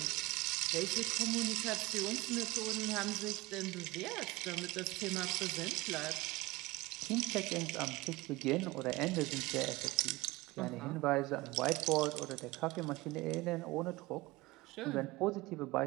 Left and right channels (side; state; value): left; quieter; 21.0 dB